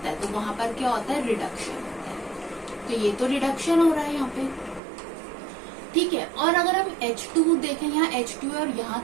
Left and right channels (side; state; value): left; drops out; at 4.8 s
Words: है तो वहां पर क्या होता है? रिडक्शन होता है। तो ये तो रिडक्शन हो रहा है यहाँ पे। ठीक है, और अगर हम H2 देखें, यहाँ H2 और यहाँ